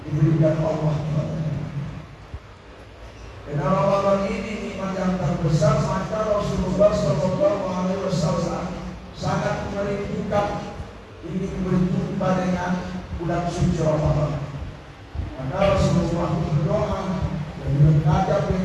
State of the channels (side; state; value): both; identical; correlation 1.00